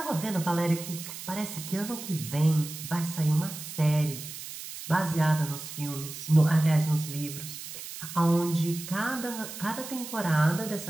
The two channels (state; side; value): noise; right; hiss, 10 dB below the sound